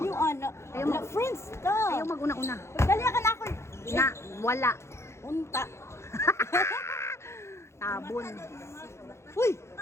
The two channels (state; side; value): late; right; 0.13 ms